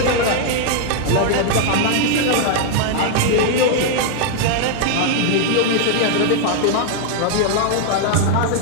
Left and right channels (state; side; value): different; both; correlation 0.00